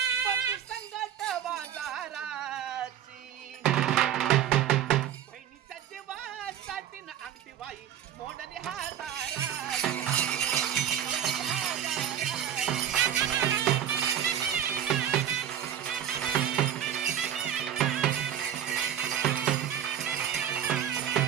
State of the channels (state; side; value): quieter; left; 10.0 dB